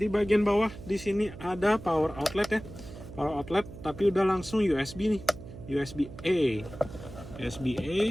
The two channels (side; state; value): right; noise; hum, 14 dB below the sound